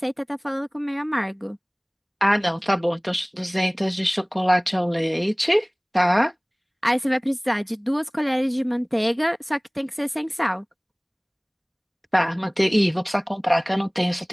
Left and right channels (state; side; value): identical; both; correlation 1.00